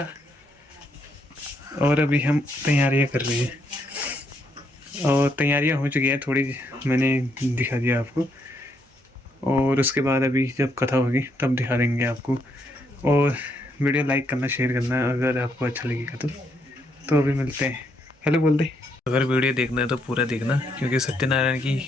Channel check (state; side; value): normal; both; correlation 0.75